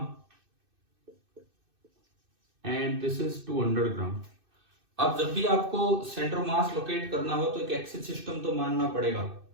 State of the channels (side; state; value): left; late; 2.6 ms